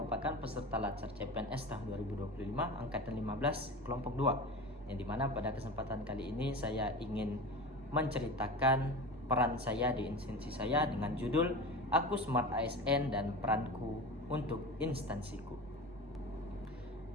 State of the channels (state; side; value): normal; both; correlation 0.30